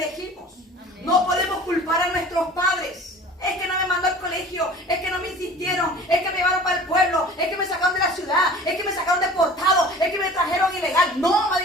No podemos culpar a nuestros padres. Es que no me mandó al colegio, es que no me insistieron, es que me llevaron para el pueblo, es que me sacaron de la ciudad, es que me sacaron deportado, es que me trajeron ilegal. No, amada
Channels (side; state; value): both; normal; correlation 0.44